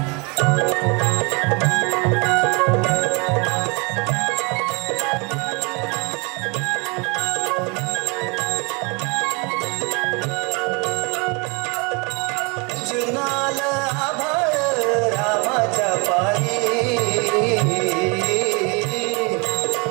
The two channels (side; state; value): left; quieter; 30.5 dB